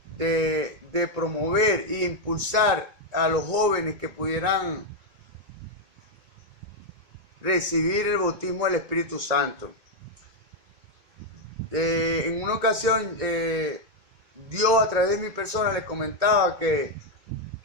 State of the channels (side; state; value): left; late; 2.2 ms